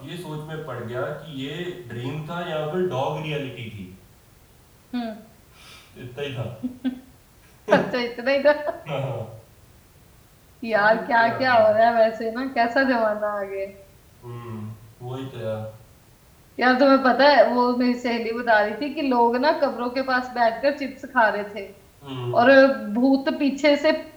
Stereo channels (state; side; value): identical; both; correlation 1.00